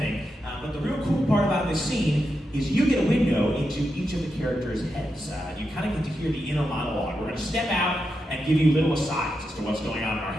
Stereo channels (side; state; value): both; normal; correlation 0.86